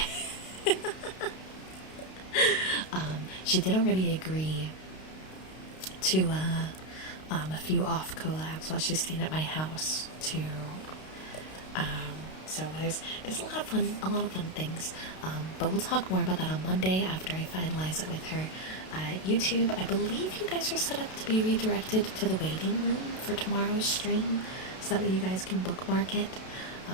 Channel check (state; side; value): late; right; 32 ms